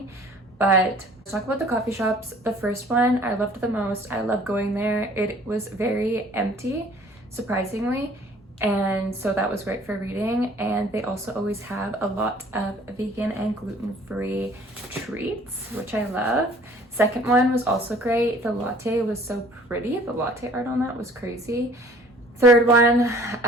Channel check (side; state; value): both; normal; correlation 0.53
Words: But let's talk about the coffee shops. The first one I loved the most. I love going there. It was very empty, surprisingly. And so that was great for reading. And they also always have a lot of vegan and gluten-free treats, which I love. Second one was also great. The latte was so pretty. The latte art on that was crazy. Third one,